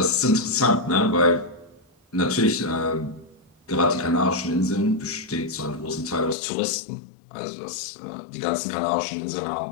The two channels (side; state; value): right; drops out; at 6.4 s